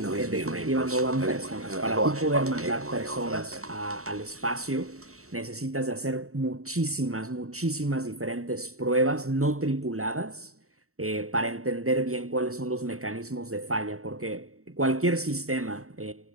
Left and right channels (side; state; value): left; late; 0.64 ms